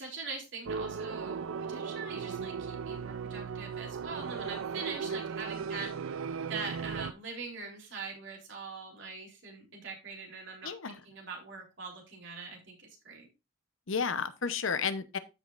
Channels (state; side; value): normal; both; correlation -0.05